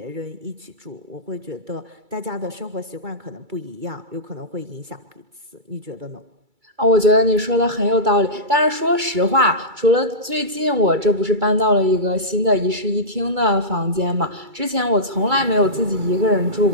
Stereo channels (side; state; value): left; late; 2.3 ms